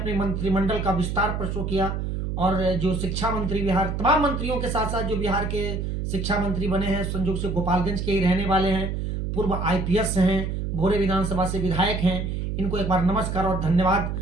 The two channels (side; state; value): right; noise; hum, 3 dB below the sound